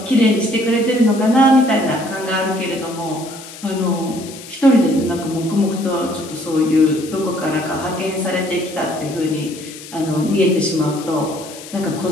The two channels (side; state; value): left; noise; hiss, 15 dB below the sound